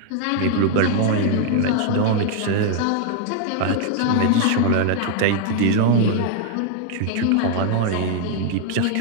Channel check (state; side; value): different; both; correlation 0.00